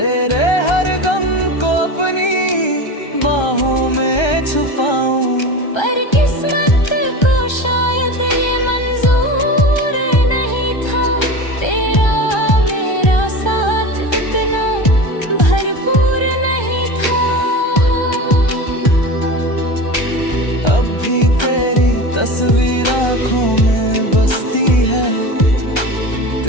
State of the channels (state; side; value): late; right; 1.3 ms